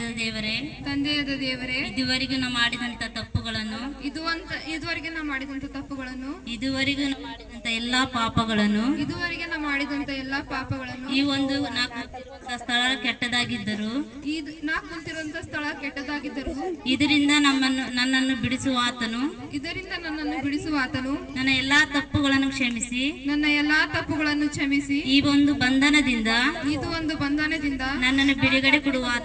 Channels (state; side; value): identical; both; correlation 1.00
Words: ದೇವರೇ, ಇದುವರೆಗೂ ನಾವು ಮಾಡಿದಂತ ತಪ್ಪುಗಳನ್ನು, ಇದುವರೆಗೆ ನಾ ಮಾಡಿದಂತ ತಪ್ಪುಗಳನ್ನು, ಇದುವರೆಗೂ ನಾವು ಮಾಡಿದಂತ ಎಲ್ಲಾ ಪಾಪಗಳನ್ನು, ಈ ಒಂದು ಸ್ಥಳ ಕೆಟ್ಟದಾಗಿದ್ದರು, ನಾ ಕುಂತಿರುವಂತ ಸ್ಥಳ ಕೆಟ್ಟದಾಗಿದ್ದರು, ಇದರಿಂದ ನನ್ನನ್ನು ಬಿಡಿಸುವ ಆತನು, ನನ್ನ ಎಲ್ಲಾ ತಪ್ಪುಗಳನ್ನು ಕ್ಷಮಿಸಿ, ಈ ಒಂದು ಬಂಧನದಿಂದ ನನ್ನನ್ನು ಬಿಡುಗಡೆ ಕೊಡುವ